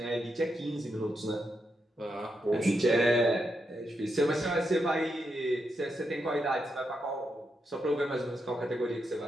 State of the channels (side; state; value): both; normal; correlation 0.83